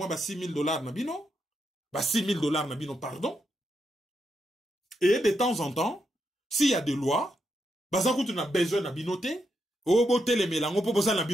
ba $6,000 na bino, ba $6,000 na bino, pardon. Et de temps en temps, s'il y a des lois, baza kutu na besoin na binote, o bote le melango po boza na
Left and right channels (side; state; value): both; normal; correlation 0.83